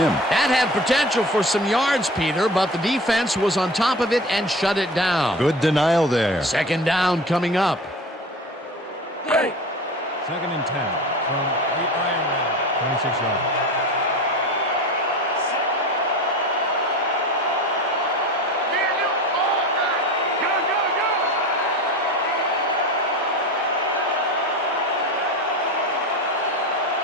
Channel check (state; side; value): normal; both; correlation 0.33